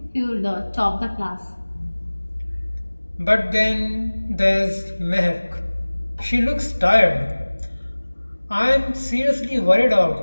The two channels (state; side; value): inverted; both; correlation -1.00